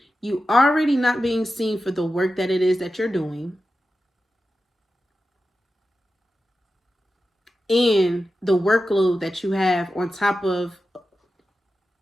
You already not being seen for the work that it is that you're doing. And the workload that you have on top of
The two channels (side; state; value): both; normal; correlation 0.92